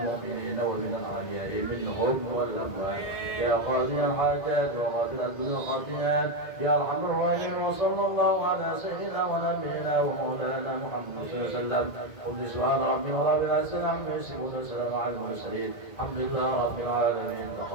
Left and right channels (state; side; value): late; right; 2.0 ms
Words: ومن الأحياء منهم والأموات يا قاضي الحاجات وغافل الذنوب والخطيئات يا أرحم الراحمين وصلى الله على سيدنا ونبينا ومولانا محمد صلى الله عليه وسلم قل سبحان ربي ورب العزة عما يصفون وسلام على المرسلين الحمد لله رب العالمين